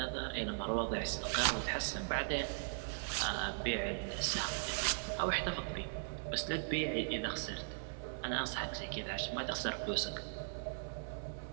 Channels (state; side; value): silent; left; digital silence